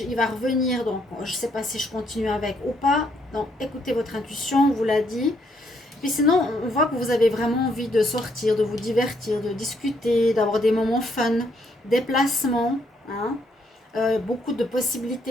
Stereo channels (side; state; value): both; normal; correlation 0.72